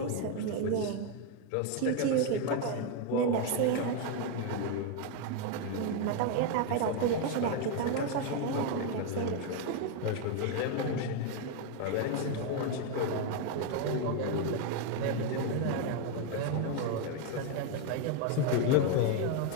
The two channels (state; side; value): different; both; correlation 0.01